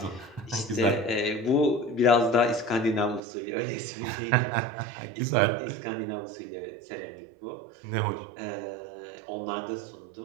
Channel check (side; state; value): left; drops out; at 3.2 s